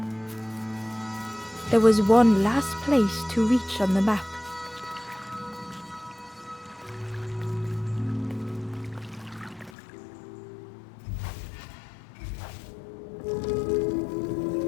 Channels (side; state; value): right; drops out; at 9.7 s